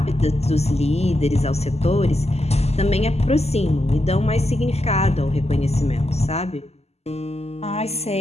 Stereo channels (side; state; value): right; late; 0.30 ms